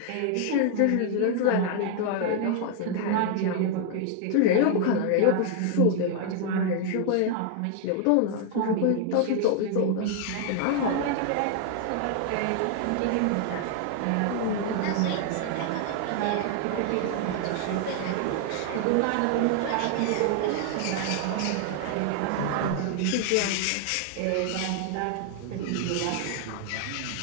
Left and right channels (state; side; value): different; both; correlation 0.00